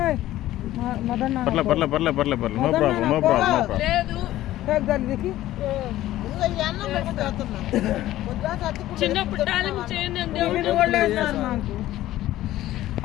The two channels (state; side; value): quieter; right; 14.7 dB